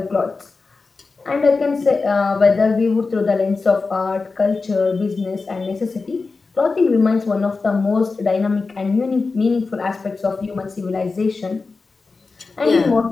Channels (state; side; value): quieter; right; 4.1 dB